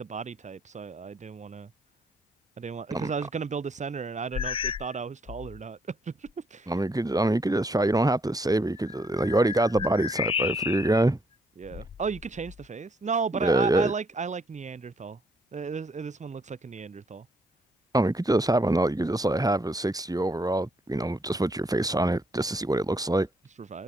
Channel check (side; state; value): both; normal; correlation 0.70